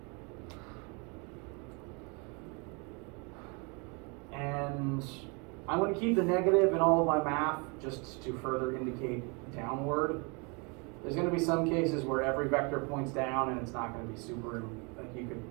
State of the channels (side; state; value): left; quieter; 32.0 dB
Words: And I'm going to keep the negative in all of my math just to further indicate downward. There's going to be some cases where every vector points down and it's not going to be super, like you